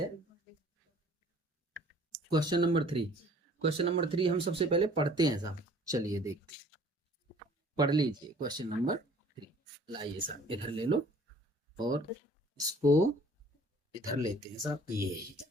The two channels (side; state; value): both; normal; correlation 0.53